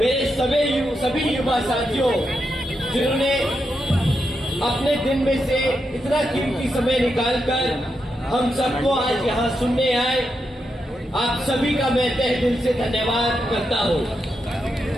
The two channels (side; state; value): both; normal; correlation 0.84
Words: सभी युवा साथियों, जिन्होंने अपने दिन में से इतना कीमती समय निकालकर हम सबको आज यहाँ सुनने आए, आप सभी का मैं तहे दिल से धन्यवाद करता हूँ।